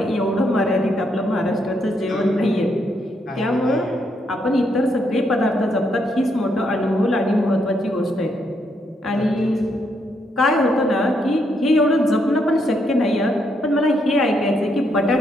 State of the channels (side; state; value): both; normal; correlation 0.76